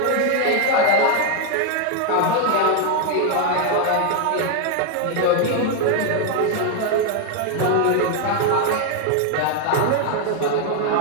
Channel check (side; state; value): both; different; correlation 0.01